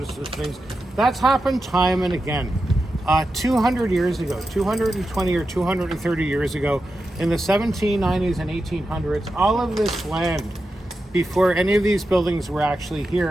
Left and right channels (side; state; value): both; normal; correlation 0.90